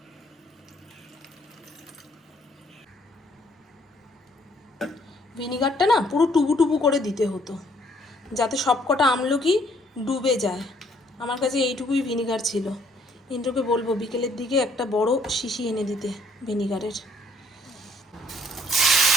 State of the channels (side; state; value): both; normal; correlation 0.64